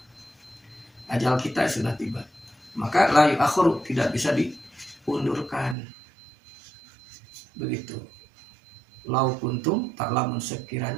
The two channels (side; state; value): left; drops out; at 5.8 s